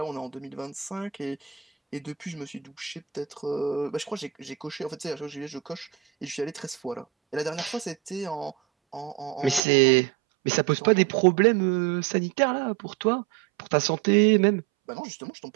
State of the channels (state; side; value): drops out; left; at 9.6 s